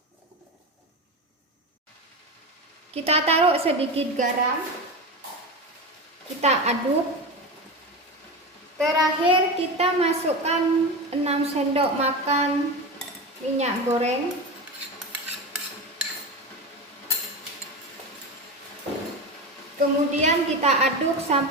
Kita taruh sedikit garam. Kita aduk. Terakhir kita masukkan 6 sendok makan minyak goreng. Kemudian kita aduk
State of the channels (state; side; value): normal; both; correlation 0.23